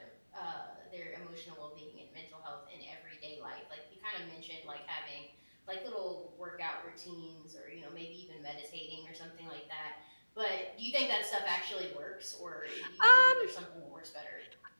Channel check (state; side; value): inverted; both; correlation -1.00